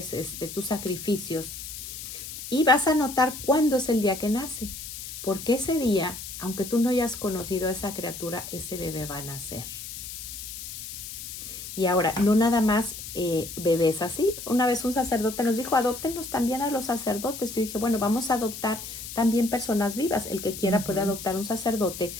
tus sacrificios. Y vas a notar cuándo es el día que nace, porque ese día, aunque tú no hayas conocido a esa criatura, ese bebé va a nacer. Y ahora, no nada más bebés así. Una vez un sacerdote nos dijo, adóptenos también a los sacerdotes. Yo dije, bueno, vamos a adoptar también personas vivas. El que quiera puede adoptar un sacerdote,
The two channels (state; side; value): noise; left; hiss, 10 dB below the sound